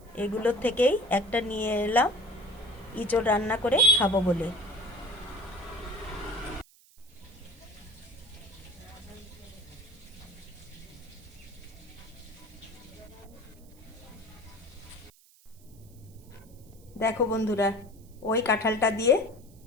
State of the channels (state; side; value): noise; right; hiss, 27 dB below the sound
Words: এগুলোর থেকেই একটা নিয়ে এলাম ইঁচড় রান্না করে খাবো বলে। দেখো বন্ধুরা, ওই কাঁঠালটা দিয়ে